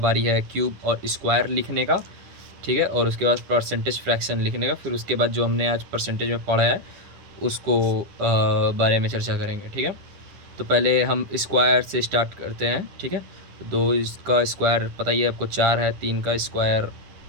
है क्यूब और स्क्वायर लिखने का, ठीक है, और उसके बाद परसेंटेज फ्रैक्शन लिखने का। फिर उसके बाद जो हमने आज परसेंटेज में पढ़ा है उसको बारे में चर्चा करेंगे, ठीक है। तो पहले हम स्क्वायर से स्टार्ट करते हैं, ठीक है। दो इसका स्क्वायर पता ही है आपको 4 है, 3 का स्क्वायर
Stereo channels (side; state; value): left; late; 10 ms